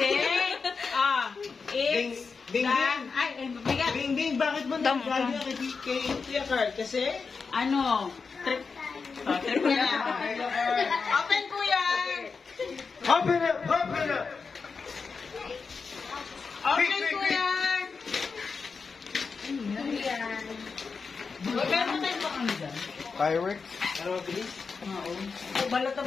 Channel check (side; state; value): right; quieter; 5.0 dB